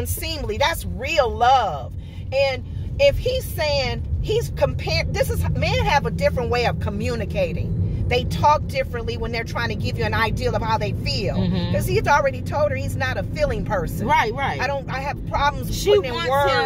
That's real love. And if he's saying, he's comparing, men have a different way of communicating. They talk differently when they're trying to give you an ideal of how they feel. Because he's already told her he's not a feeling person. Right. I have problems putting in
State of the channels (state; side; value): identical; both; correlation 1.00